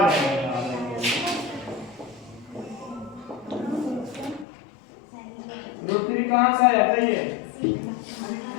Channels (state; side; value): drops out; right; at 4.5 s